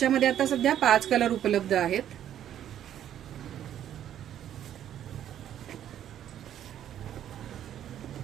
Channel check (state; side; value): quieter; left; 10.7 dB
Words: आता सध्या 5 कलर उपलब्ध आहेत.